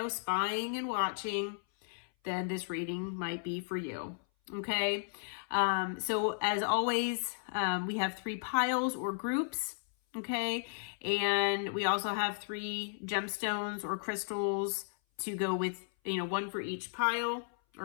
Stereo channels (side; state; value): right; silent; 55 dB below the other